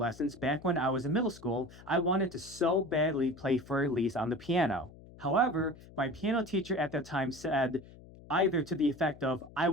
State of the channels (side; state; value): left; noise; hum, 20 dB below the sound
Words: back when I was in middle school, I wanted to so badly play Für Elise on the piano. However, my piano teacher at that time said either to the effect of I